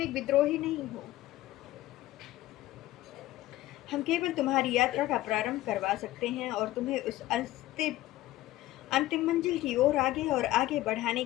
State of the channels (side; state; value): right; quieter; 16.0 dB